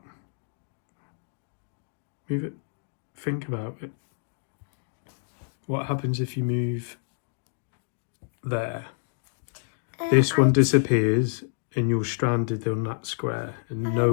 Move it. Think about it. What happens if you move there? This one disappears and you're stranded on that square and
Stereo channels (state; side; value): silent; right; digital silence